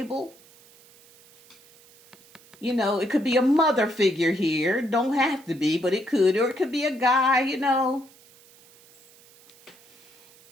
You know, it could be a mother figure here. Don't have to be, but it could, or it could be a guy. You know,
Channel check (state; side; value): noise; right; hiss, 27 dB below the sound